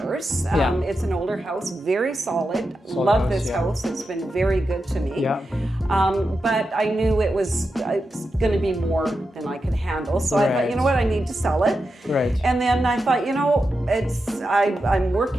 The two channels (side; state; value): both; normal; correlation 0.89